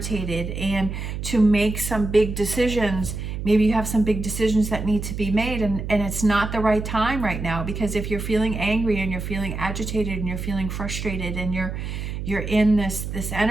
and to make some big decisions. Maybe you have some big decisions that need to be made, and it's not the right time right now, because if you're feeling angry and you're feeling agitated and you're feeling frustrated and you're in this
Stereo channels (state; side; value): noise; right; hum, 5 dB below the sound